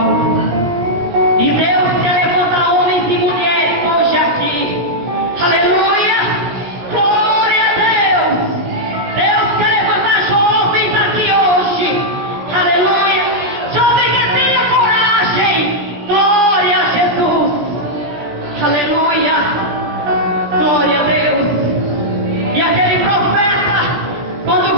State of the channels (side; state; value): left; late; 17 ms